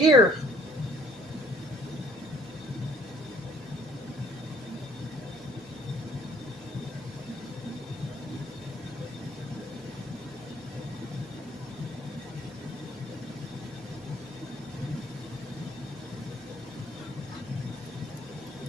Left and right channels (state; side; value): noise; left; hum, 24 dB below the sound